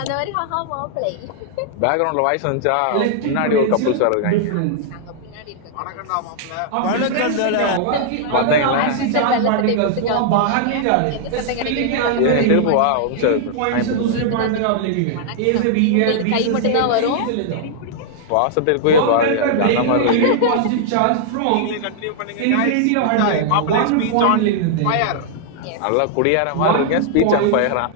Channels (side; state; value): both; different; correlation -0.01